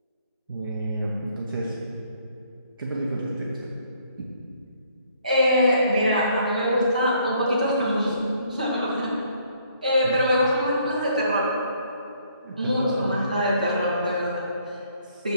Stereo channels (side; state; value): both; inverted; correlation -0.65